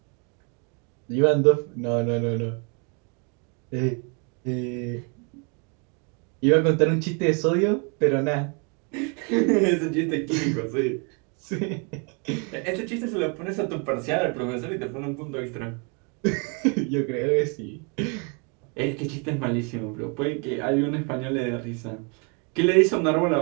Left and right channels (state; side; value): quieter; left; 35.3 dB